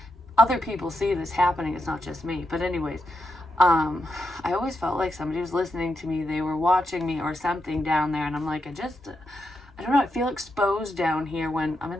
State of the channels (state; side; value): normal; both; correlation 0.84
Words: other people see this happening. It's not just me. But anyways, I always felt like somebody was listening to me. They were watching me or something down there. And I'm like, I don't know. I feel exposed down here when I'm in